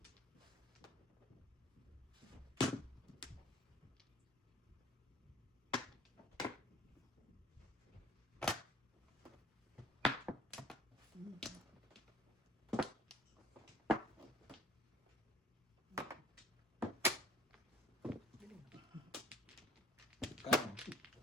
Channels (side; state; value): both; normal; correlation 0.52